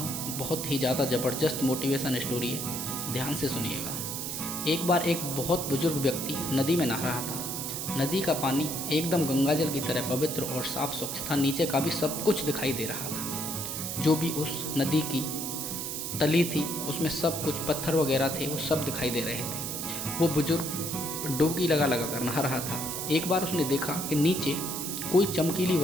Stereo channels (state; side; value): noise; right; hiss, 4 dB below the sound